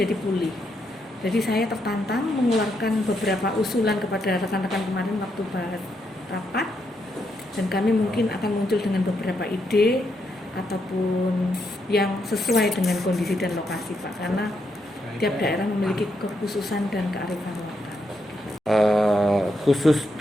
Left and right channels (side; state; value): both; normal; correlation 0.80